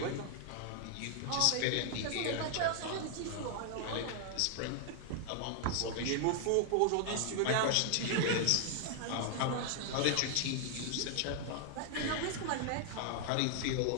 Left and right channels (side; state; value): both; different; correlation 0.00